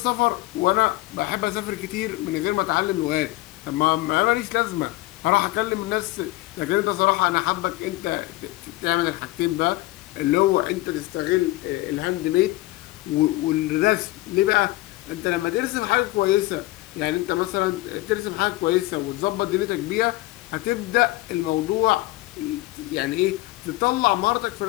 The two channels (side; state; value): right; quieter; 19.0 dB